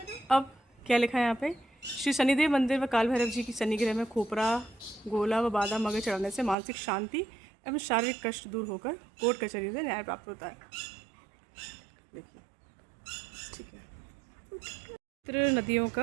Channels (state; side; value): drops out; left; at 6.6 s